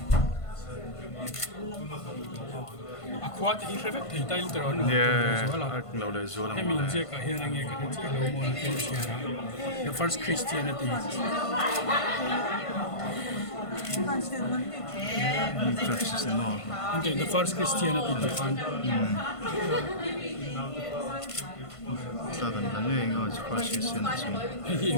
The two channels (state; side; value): late; right; 1.5 ms